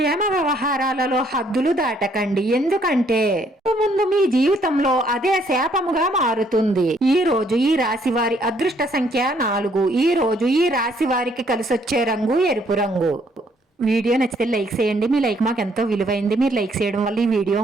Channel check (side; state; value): both; normal; correlation 0.67